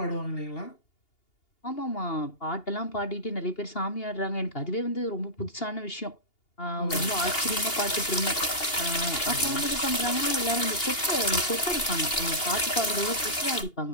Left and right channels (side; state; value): right; late; 2.8 ms